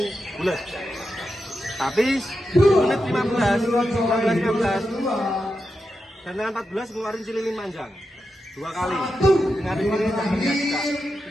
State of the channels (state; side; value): normal; both; correlation 0.88